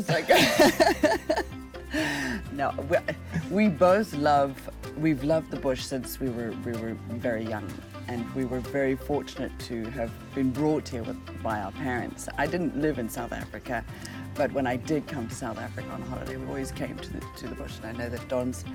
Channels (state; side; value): identical; both; correlation 1.00